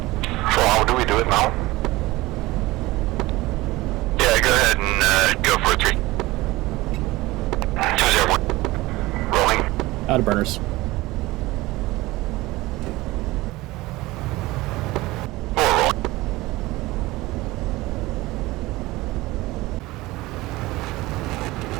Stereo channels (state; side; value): quieter; left; 19.7 dB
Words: So how do we do it now? Yeah, go ahead and go for a 3. 201. Rolling. Out of burners.